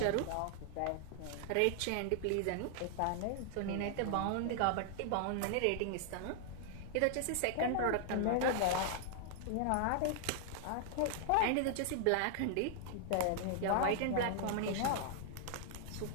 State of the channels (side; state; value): both; different; correlation -0.01